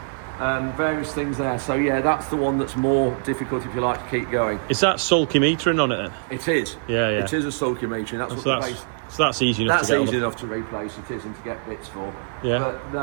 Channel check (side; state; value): left; silent; 56 dB below the other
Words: Various things there. So yeah, that's the one that's more difficult if you like to keep going. Is that sulky metering on it then? It is. Yeah, yeah. It is a sulky metering. That's what So the base. that's easy enough That's to get easy on. enough to replace. It is, and to get bits for. Yeah. But